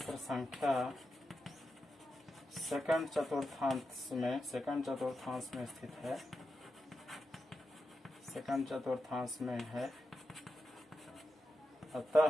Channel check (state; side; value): normal; both; correlation 0.89